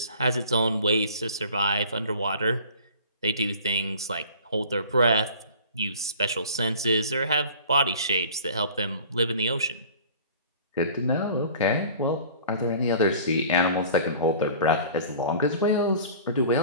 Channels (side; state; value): both; inverted; correlation -0.45